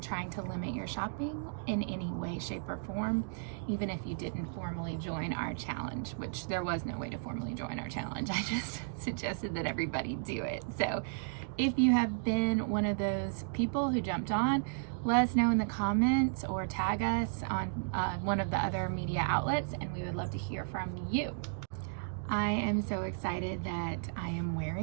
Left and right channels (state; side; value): silent; left; digital silence